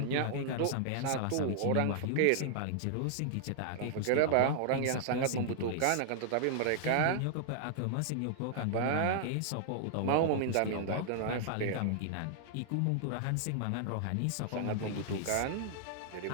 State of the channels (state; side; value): different; both; correlation -0.01